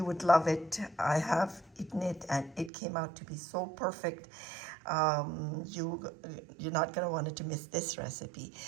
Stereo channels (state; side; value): drops out; left; at 2.7 s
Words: would love it. I have eaten it and it came out to be so perfect. You're not going to want to miss this recipe.